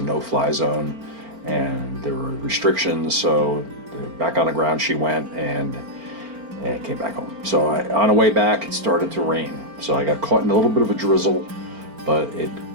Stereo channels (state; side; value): late; left; 4.4 ms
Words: no-fly zone and there were restrictions. So back on the ground she went, and came back home. So on the way back it started to rain, so I got caught in a little bit of a drizzle, but it